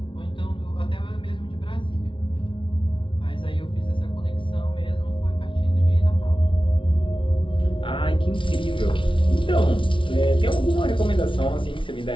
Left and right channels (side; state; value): right; late; 0.25 ms